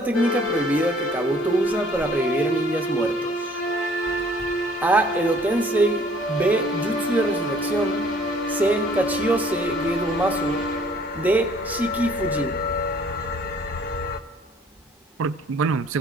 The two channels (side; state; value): both; normal; correlation 0.57